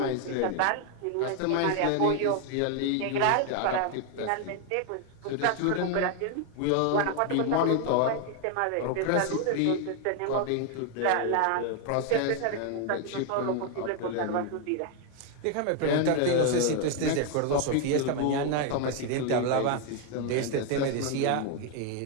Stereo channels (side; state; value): both; different; correlation 0.01